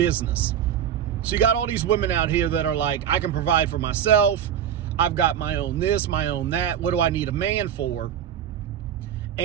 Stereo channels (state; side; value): quieter; left; 9.5 dB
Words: So you got all these women out here that are like, I can provide for myself. I've got my own this, my own that. What do I need a man for?